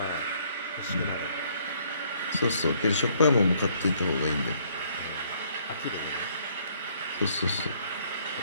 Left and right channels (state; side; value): inverted; both; correlation -0.65